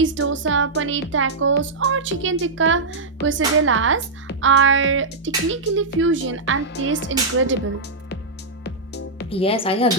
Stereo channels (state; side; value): quieter; left; 3.6 dB